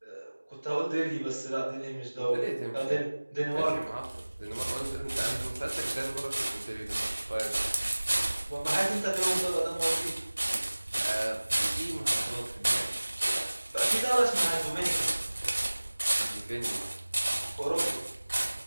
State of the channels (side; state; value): both; inverted; correlation -1.00